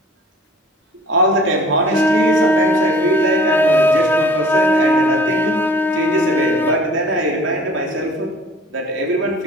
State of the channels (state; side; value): normal; both; correlation 0.49